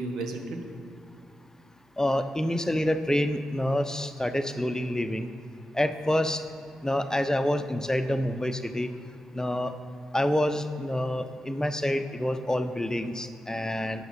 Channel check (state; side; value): normal; both; correlation 0.92